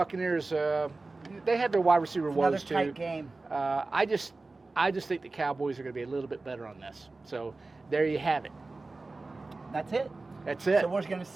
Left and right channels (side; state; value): left; quieter; 3.4 dB